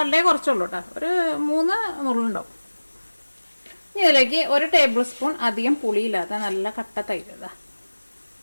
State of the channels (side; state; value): both; inverted; correlation -1.00